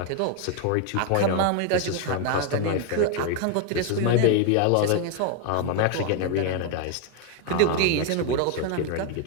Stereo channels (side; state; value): both; different; correlation 0.01